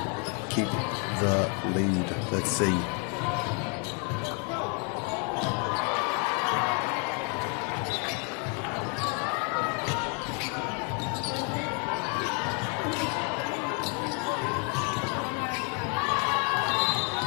keep the lead? Let's see.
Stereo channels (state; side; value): quieter; right; 36.5 dB